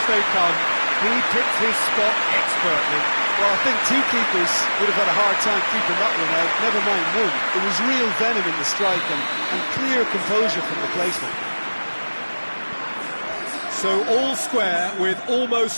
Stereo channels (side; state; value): both; inverted; correlation -1.00